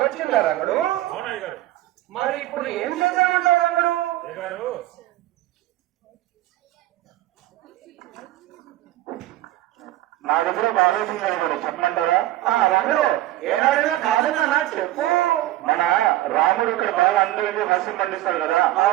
రంగడు అవునయ్య గారు మరి ఇప్పుడు ఏం చేద్దామంటావు రంగడు అయ్యగారు నా దగ్గర బాగా గారు చెప్పమంటారా రంగడు ఏనాడైనా కాదన్నా చెప్పు మన రాముడు ఇక్కడ బాగా అందరికీ హాస్యం పండిస్తాడు కదా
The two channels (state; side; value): quieter; left; 15.5 dB